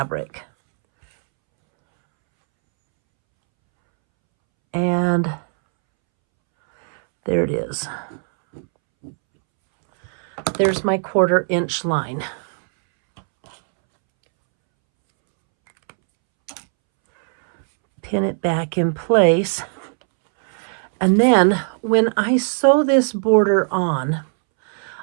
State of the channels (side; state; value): left; silent; 66 dB below the other